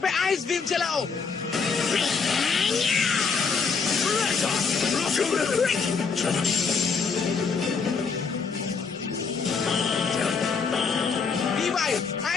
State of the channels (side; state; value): right; quieter; 5.3 dB